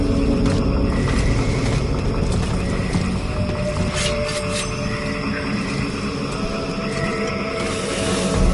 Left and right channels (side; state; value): both; identical; correlation 1.00